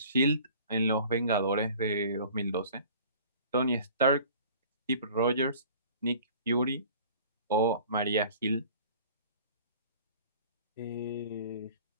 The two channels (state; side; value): inverted; both; correlation -0.47